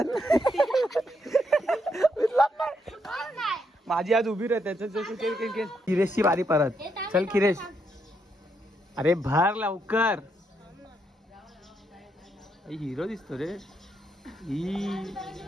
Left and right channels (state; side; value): normal; both; correlation 0.78